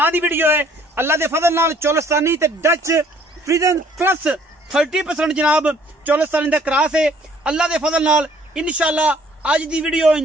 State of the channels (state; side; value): normal; both; correlation 0.59